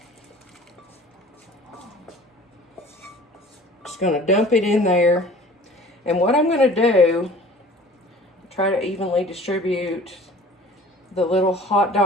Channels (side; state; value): both; normal; correlation 0.46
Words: Just going to dump it in there. And what I'm going to do, try to evenly distribute the little hot